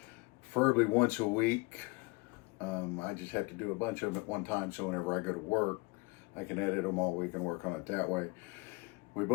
preferably once a week. I just have to do a bunch of them at one time, so whenever I go to work, I can edit them all week and work on it that way. We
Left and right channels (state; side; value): quieter; right; 26.7 dB